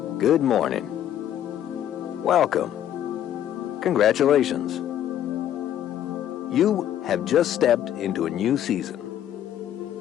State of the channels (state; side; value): quieter; right; 11.1 dB